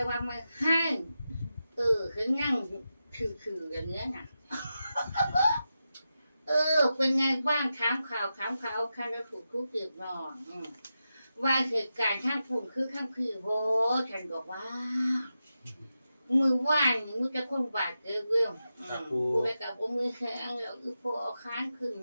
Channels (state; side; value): inverted; both; correlation -0.90